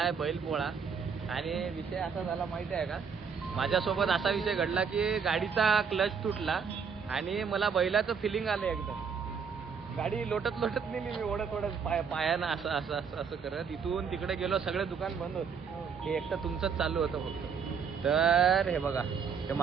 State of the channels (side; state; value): left; quieter; 6.2 dB